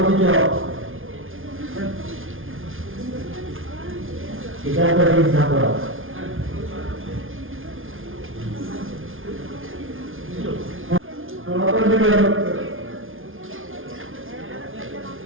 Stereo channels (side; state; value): left; late; 0.59 ms